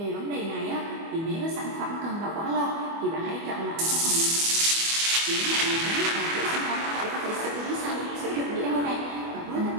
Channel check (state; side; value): late; left; 24 ms